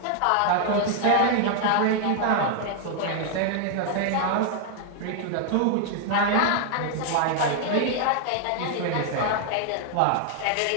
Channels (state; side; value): different; both; correlation 0.00